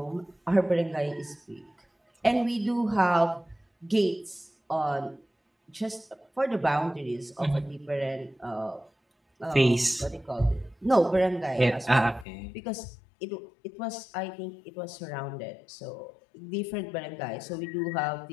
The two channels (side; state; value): right; drops out; at 12.2 s